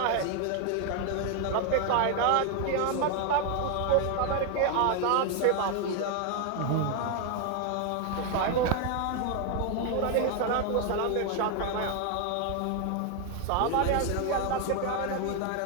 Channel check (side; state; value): both; different; correlation 0.01